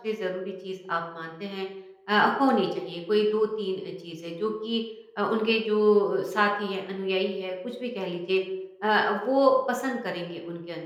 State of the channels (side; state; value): both; identical; correlation 1.00